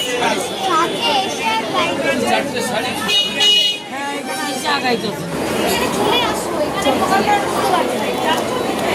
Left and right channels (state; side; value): identical; both; correlation 1.00